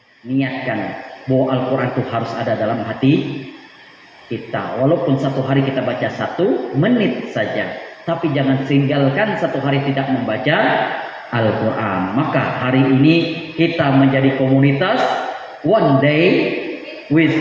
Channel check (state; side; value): identical; both; correlation 1.00